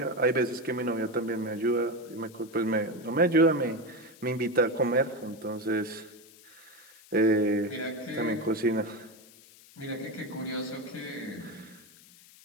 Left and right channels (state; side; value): noise; left; hiss, 23 dB below the sound